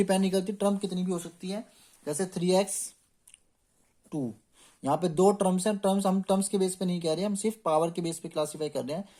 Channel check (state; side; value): identical; both; correlation 1.00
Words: नहीं करती, टर्म कितनी भी हो सकती है। जैसे 3x2, यहाँ पे दो टर्म्स हैं, टर्म्स हम टर्म्स के बेस पे नहीं कह रहे हैं, हम सिर्फ पावर के बेस पे क्लासीफाई कर रहे हैं।